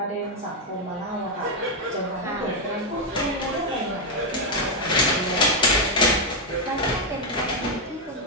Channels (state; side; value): normal; both; correlation 0.02